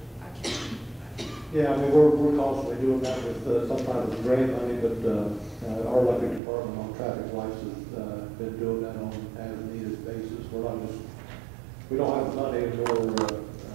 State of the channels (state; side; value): drops out; left; at 6.4 s